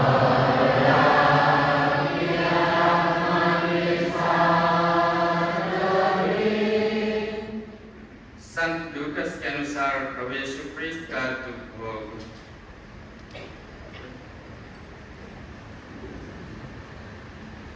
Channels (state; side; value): identical; both; correlation 1.00